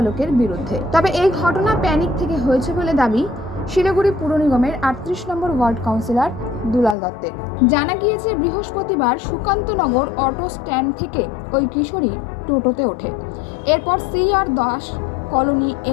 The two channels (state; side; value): drops out; right; at 7.0 s